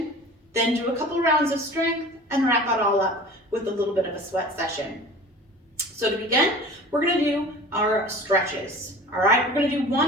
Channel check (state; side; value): normal; both; correlation 0.40